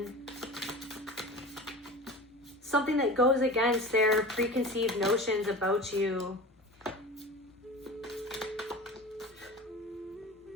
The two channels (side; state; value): both; normal; correlation 0.34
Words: something that goes against their preconceived notions about you.